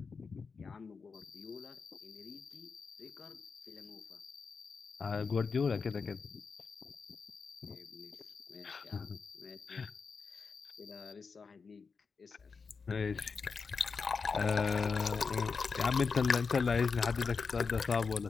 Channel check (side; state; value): right; quieter; 5.1 dB